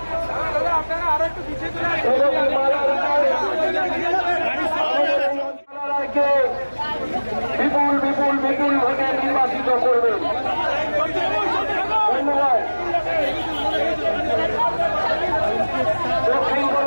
বিপুল বিপুল বিপুল ভোটে নির্বাচিত করবেন। ধন্যবাদ। দক্ষিণ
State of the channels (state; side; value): inverted; both; correlation -1.00